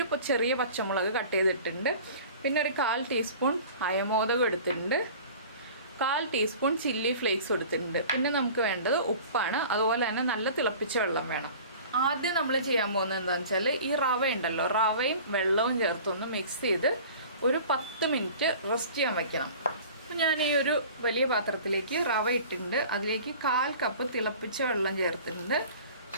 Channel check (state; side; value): inverted; both; correlation -0.43